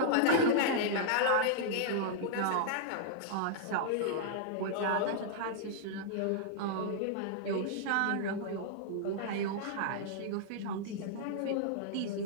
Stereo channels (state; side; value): different; both; correlation -0.01